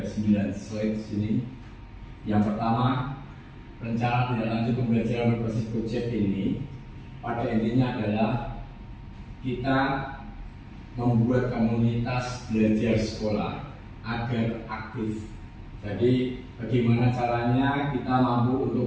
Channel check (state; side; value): identical; both; correlation 1.00